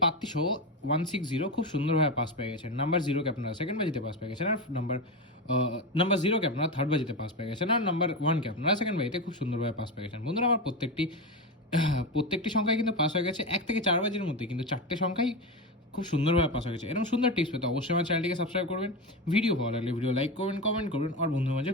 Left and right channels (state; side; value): normal; both; correlation 0.17